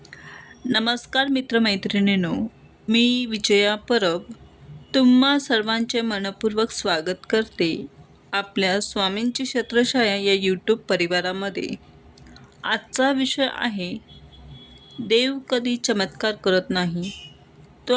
नमस्कार मित्रमैत्रिणींनो, मी विजया परब तुम्हा सर्वांचे मनपूर्वक स्वागत करते आपल्या स्वामींची छत्रछाया या यूट्यूब परिवारामध्ये. आजचा विषय आहे, देव कधी चमत्कार करत नाही, तो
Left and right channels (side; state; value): both; identical; correlation 1.00